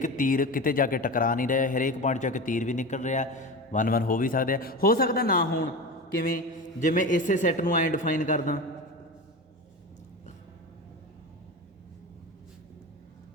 ਤੀਰ ਕਿਤੇ ਜਾ ਕੇ ਟਕਰਾ ਨਹੀਂ ਰਿਹਾ, ਹਰੇਕ ਪੁਆਇੰਟ ਜਾ ਕੇ ਤੀਰ ਵੀ ਨਿਕਲ ਰਿਹਾ, 1 1 ਹੋ ਵੀ ਸਕਦੇ ਆ। ਹੋ ਸਕਦਾ ਨਾ ਹੋਣ, ਕਿਵੇਂ, ਜੇ ਮੈਂ ਇਸੇ ਸੈੱਟ ਨੂੰ ਐਂ ਡਿਫਾਈਨ ਕਰਦਾ,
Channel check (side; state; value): both; normal; correlation 0.27